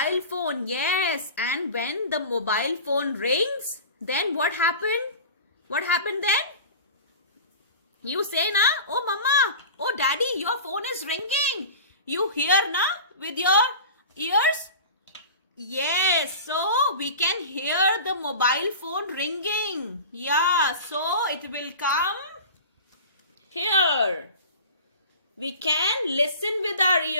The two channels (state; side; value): inverted; both; correlation -0.35